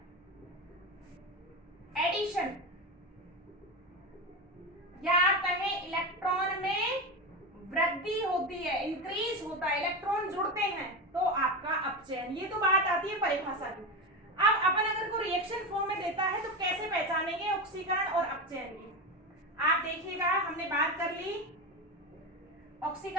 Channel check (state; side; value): normal; both; correlation 0.19